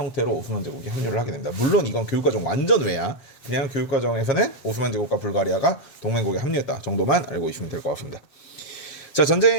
오스만 제국이 합류를 하게 됩니다. 물론 이건 교육과정 완전 외야. 그냥 교육과정에서는 오스만 제국과 불가리아가 동맹국에 합류했다 정도만 알고 있으면 될 것 같습니다. 자,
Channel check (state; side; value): late; right; 7.4 ms